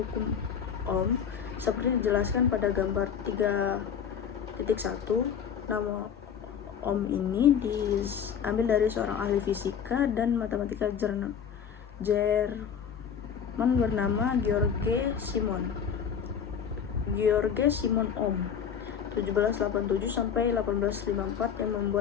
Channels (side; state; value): right; quieter; 7.6 dB